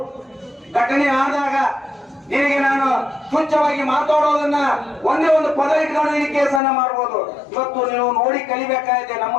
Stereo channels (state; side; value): drops out; right; at 6.6 s